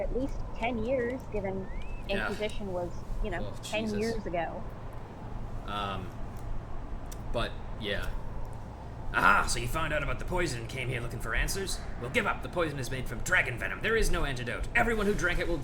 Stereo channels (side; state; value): both; identical; correlation 1.00